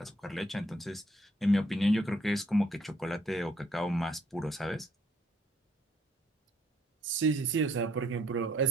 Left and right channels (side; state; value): both; normal; correlation 0.68